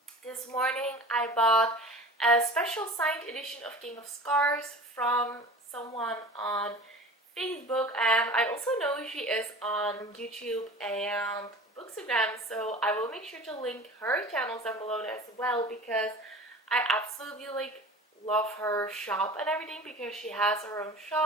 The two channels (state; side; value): normal; both; correlation 0.38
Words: This morning I bought a special signed edition of King of Scars from someone on Facebook, and I also know she is on YouTube and Bookstagram, so I will make sure to link her channels down below as well, because I absolutely love her shop and everything, because she has her own